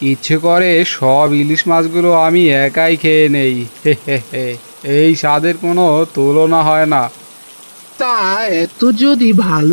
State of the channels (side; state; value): both; inverted; correlation -1.00